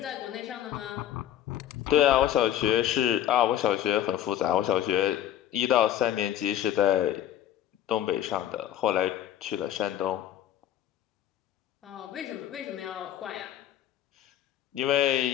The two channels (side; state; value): right; quieter; 11.6 dB